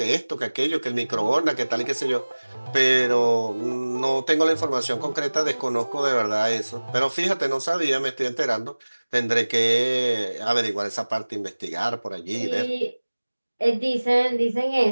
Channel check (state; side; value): inverted; both; correlation -1.00